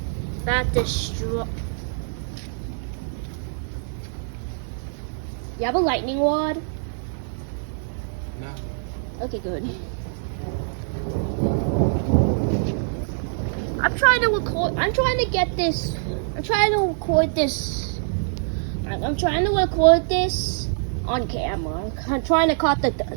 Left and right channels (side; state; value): left; silent; 62 dB below the other